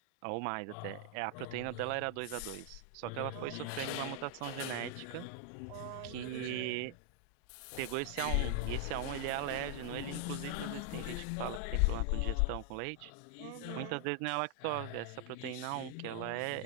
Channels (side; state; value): both; different; correlation 0.00